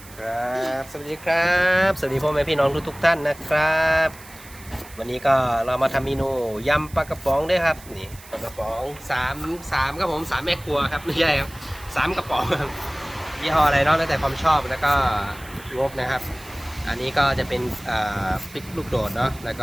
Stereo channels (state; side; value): noise; right; hiss, 20 dB below the sound